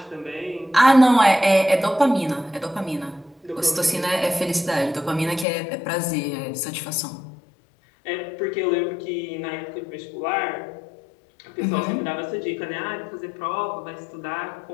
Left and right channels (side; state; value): right; drops out; at 5.5 s